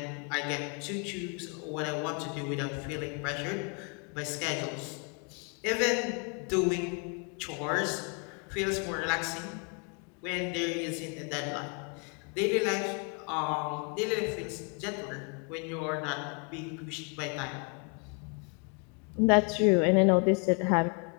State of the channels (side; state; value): right; quieter; 37.1 dB